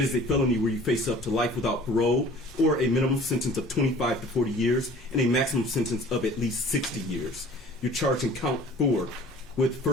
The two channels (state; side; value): normal; both; correlation 0.48